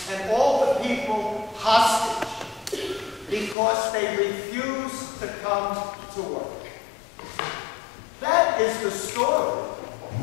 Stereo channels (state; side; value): drops out; right; at 3.6 s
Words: and all the people hostage because they refuse to come to work. That is the story.